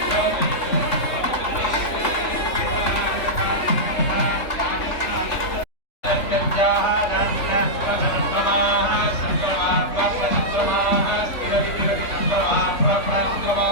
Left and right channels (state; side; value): late; right; 3.4 ms